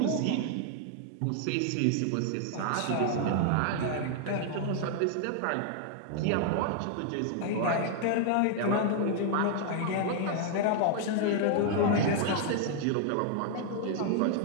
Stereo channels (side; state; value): both; different; correlation 0.00